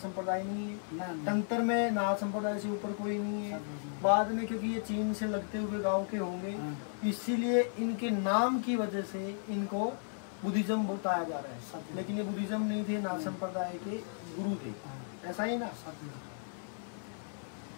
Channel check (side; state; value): right; silent; digital silence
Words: नहीं है, तंत्र में नाथ संप्रदाय से ऊपर कोई नहीं है। बाद में क्योंकि ये चीन से लगते हुए गांव के होंगे, इसीलिए इनके नाम की वजह से इनको बुद्धिज्म बताया जा रहा है, लेकिन ये बुद्धिज्म नहीं थे, नाथ संप्रदाय के गुरु थे, ऐसा ही ना।